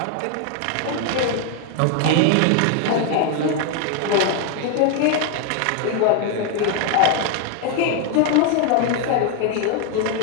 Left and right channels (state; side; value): different; both; correlation 0.01